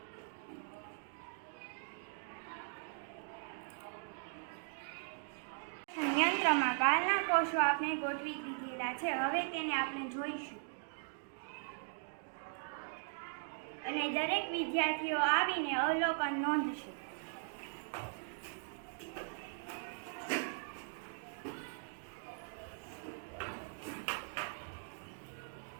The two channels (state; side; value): silent; left; digital silence